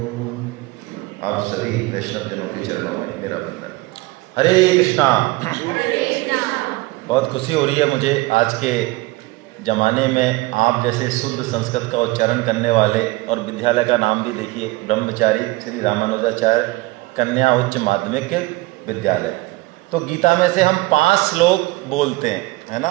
आप सभी वैष्णव जनों के चरणों में मेरा वंदन। हरे कृष्णा। बहुत खुशी हो रही है मुझे आज के ज़माने में आप जैसे शुद्ध संस्कृत का उच्चारण करने वाले, और विद्यालय का नाम भी देखिए, ब्रह्मचारी श्री रामानुजाचार्य कन्या उच्च माध्यमिक विद्यालय। तो गीता में से हम 5 श्लोक बोलते हैं, है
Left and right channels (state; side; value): quieter; left; 21.6 dB